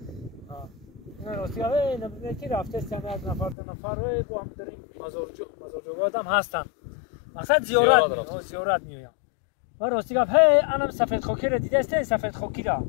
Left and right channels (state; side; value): drops out; right; at 3.6 s